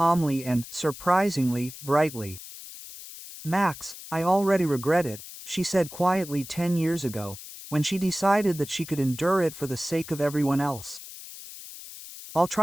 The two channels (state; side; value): noise; left; hiss, 14 dB below the sound